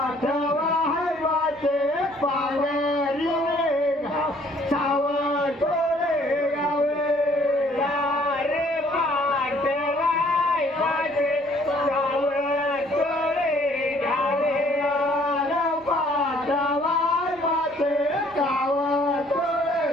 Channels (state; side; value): noise; right; rumble, 28 dB below the sound